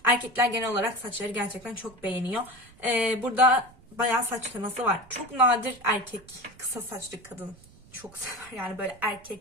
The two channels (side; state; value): right; noise; rumble, 25 dB below the sound